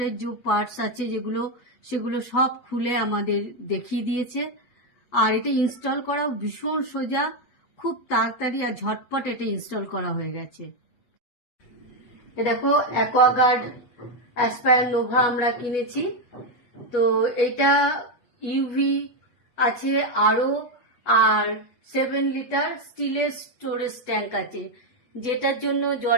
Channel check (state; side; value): late; right; 8.2 ms